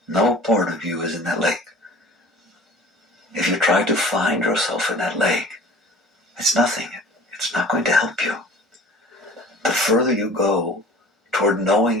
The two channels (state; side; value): normal; both; correlation 0.45